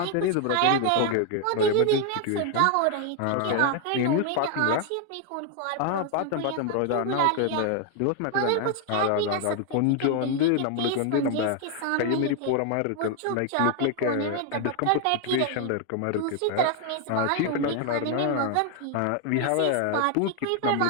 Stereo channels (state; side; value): different; both; correlation 0.00